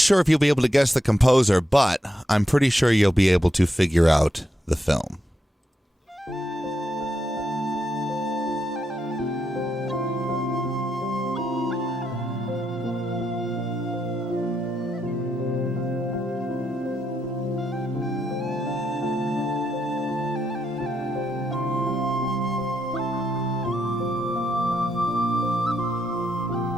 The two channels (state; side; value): normal; both; correlation 0.82